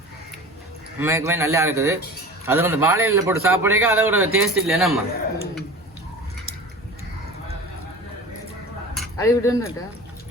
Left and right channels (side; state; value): both; normal; correlation 0.37